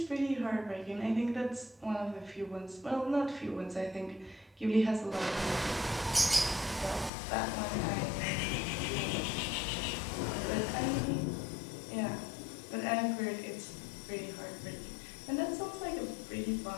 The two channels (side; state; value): right; drops out; at 7.1 s